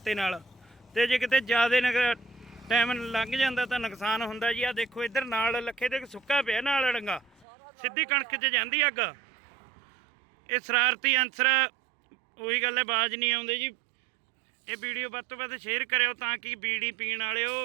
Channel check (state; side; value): drops out; left; at 7.5 s